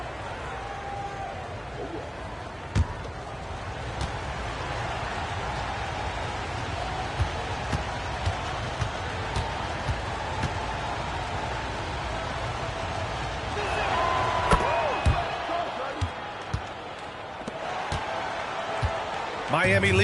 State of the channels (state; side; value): identical; both; correlation 1.00